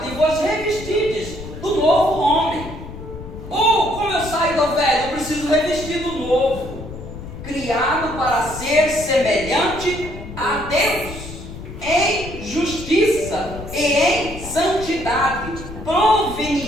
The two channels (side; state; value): left; noise; rumble, 12 dB below the sound